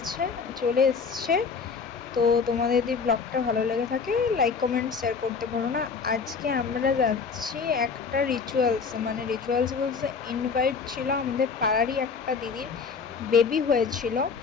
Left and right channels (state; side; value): quieter; right; 5.4 dB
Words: এসছে। তো তোমাদের যদি ব্লগটা ভালো লেগে থাকে লাইক কমেন্ট শেয়ার করতে ভুলো না। আজকে আমরা যাচ্ছি একটা রিচুয়ালস বলতে ইনভাইট ছিল আমাদের পাড়ারই একটা দিদির বেবি হয়েছিল।